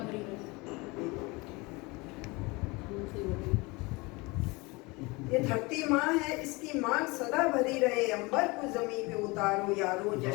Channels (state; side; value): quieter; right; 25.2 dB